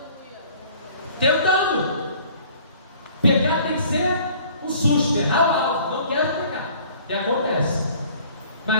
Pecar tem que ser um susto, errar o alvo. Não quero pecar, e acontece.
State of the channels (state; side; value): inverted; both; correlation -0.52